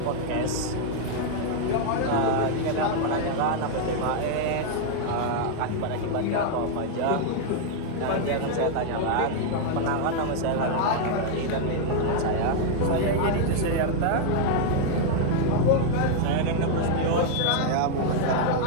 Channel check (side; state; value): both; different; correlation 0.00